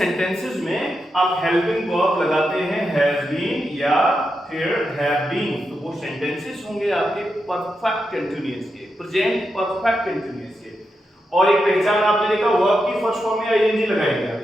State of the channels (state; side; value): normal; both; correlation 0.86